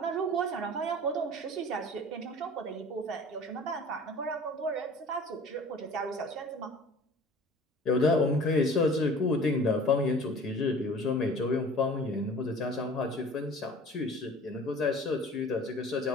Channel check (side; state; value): both; normal; correlation 0.45